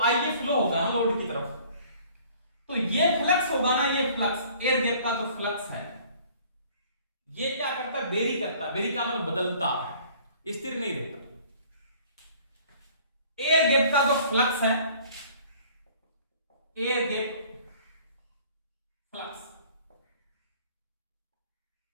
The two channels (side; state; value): both; inverted; correlation -0.53